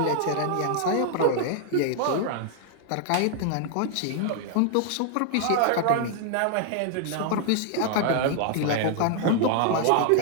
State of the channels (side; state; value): both; different; correlation 0.00